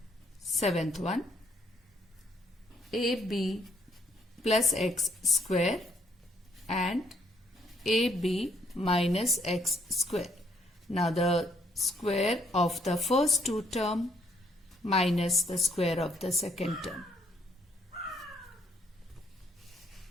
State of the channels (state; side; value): normal; both; correlation 0.69